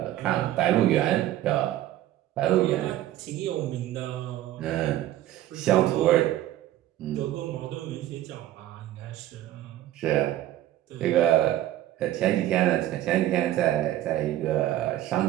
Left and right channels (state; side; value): quieter; left; 13.7 dB